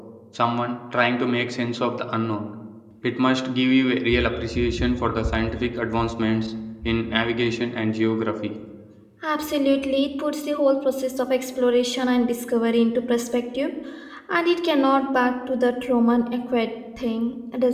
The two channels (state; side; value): identical; both; correlation 1.00